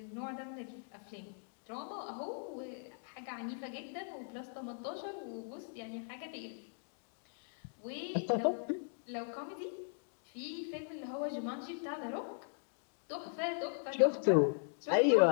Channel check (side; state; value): right; silent; digital silence